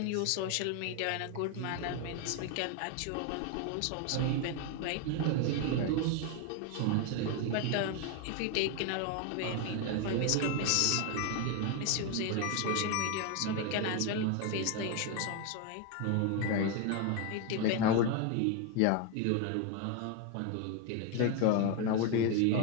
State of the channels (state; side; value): different; both; correlation 0.01